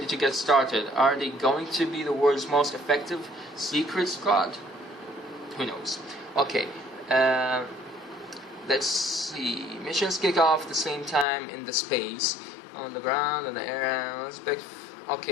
to get started. Are they going to be the world's most effective secret squad? Who knows? Okay, let's see. Missions kick off the same time in the space, on the ground, in the air.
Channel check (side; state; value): right; drops out; at 11.2 s